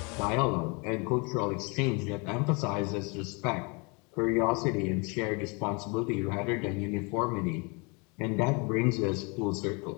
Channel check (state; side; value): quieter; right; 31.0 dB